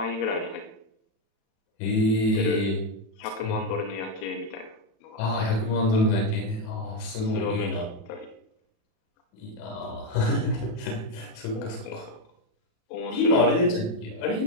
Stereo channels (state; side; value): late; right; 36 ms